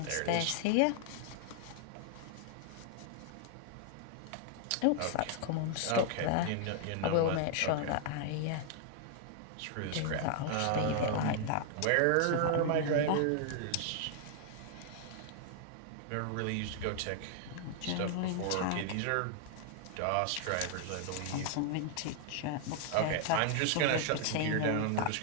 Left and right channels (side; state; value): both; different; correlation 0.00